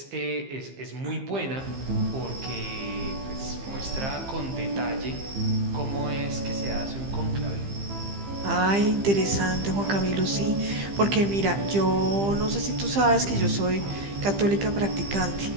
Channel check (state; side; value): late; left; 15 ms